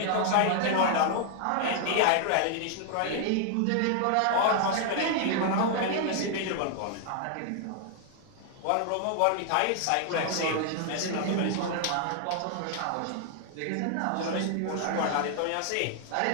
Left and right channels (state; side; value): different; both; correlation 0.00